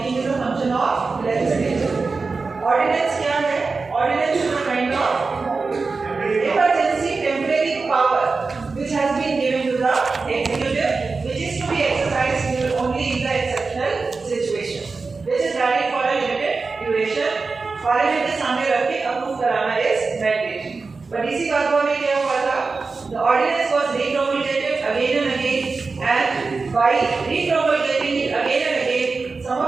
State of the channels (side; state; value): left; quieter; 4.2 dB